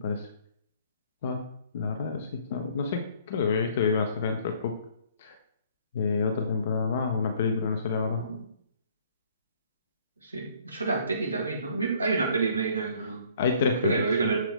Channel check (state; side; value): inverted; both; correlation -0.59